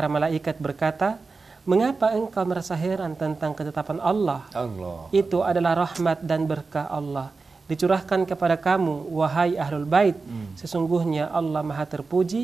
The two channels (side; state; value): left; quieter; 4.2 dB